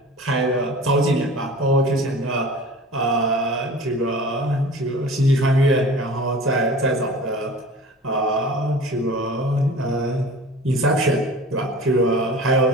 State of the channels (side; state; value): both; normal; correlation 0.40